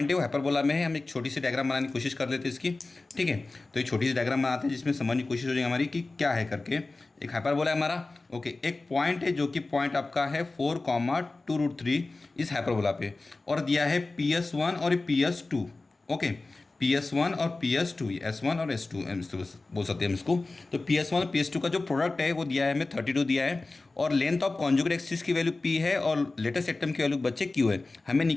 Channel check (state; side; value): quieter; right; 3.3 dB